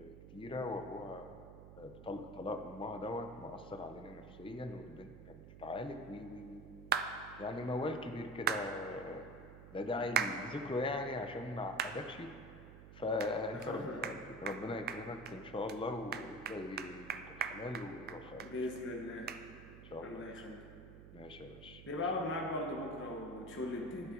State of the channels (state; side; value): noise; right; hum, 14 dB below the sound